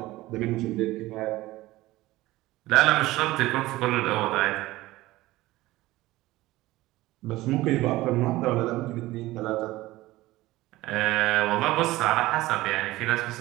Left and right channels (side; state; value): left; quieter; 17.9 dB